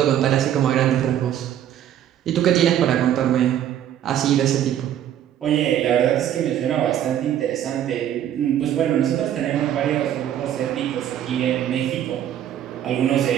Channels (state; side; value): quieter; left; 10.7 dB